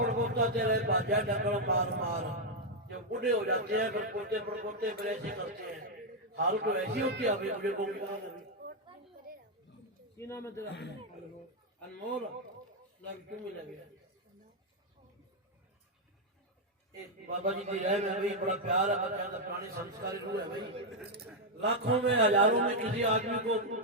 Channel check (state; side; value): normal; both; correlation -0.01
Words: तेरे बाजा डंगल मार मार जब बूढ़े हो जाते हैं फिर पोते पड़पोते फिर ऐसे करते हैं हाल तो ऐसी होती है अभी बुढ़े को नाम है तेरा अनमोल लग क्यों मिला गया बाबा जी की राय में भाई बड़ा प्यार है बच्चा का पुराने संस्कारी रूह है भाई लाखों में हजारों में किसी आदमी को